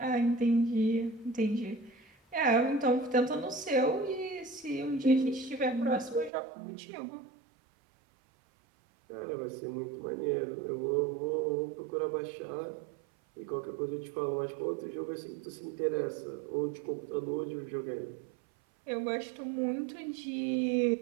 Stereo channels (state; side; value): drops out; left; at 6.3 s